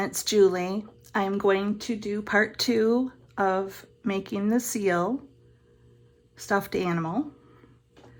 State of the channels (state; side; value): identical; both; correlation 1.00